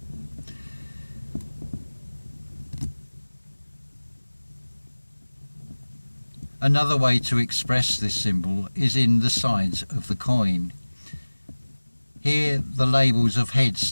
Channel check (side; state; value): both; inverted; correlation -1.00